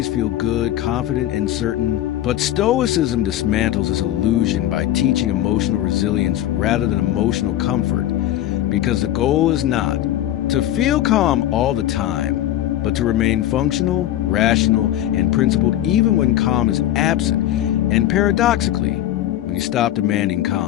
feel good, confident, and certain. But Stoicism dismantles this illusion by teaching emotional resilience rather than emotional comfort. Because the goal is not to feel calm all the time, but to remain functional, rational, and principled even when calm is absent. And paradoxically, when you stop demanding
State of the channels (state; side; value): quieter; right; 12.9 dB